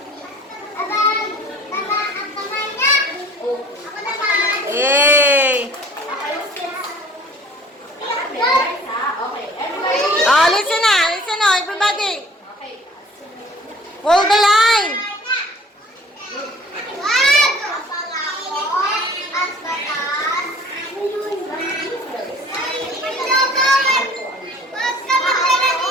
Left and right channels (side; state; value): both; normal; correlation 0.50